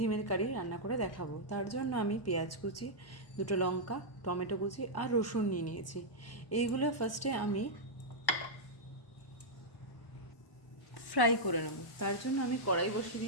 কারি রান্না করে দেখাবো। তার জন্য আমি পেঁয়াজ কুচি, দুটো লঙ্কা, টমেটো কুচি আর রসুন নিয়ে নিয়েছি। এইগুলো ফার্স্টে আমি ফ্রাই করে নেব। তার জন্য আমি কড়াই বসিয়ে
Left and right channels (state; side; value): late; right; 1.1 ms